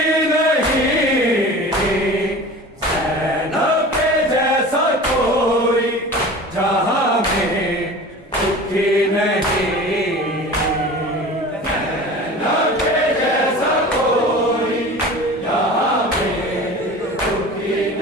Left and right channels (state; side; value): normal; both; correlation 0.37